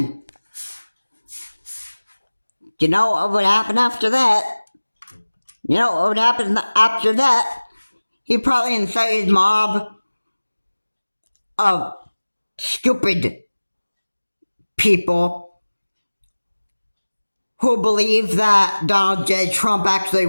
you know what would happen after that? You know what would happen after that? He'd probably incite his mob of stupid people who believe that Donald J. Trump actually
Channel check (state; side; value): inverted; both; correlation -1.00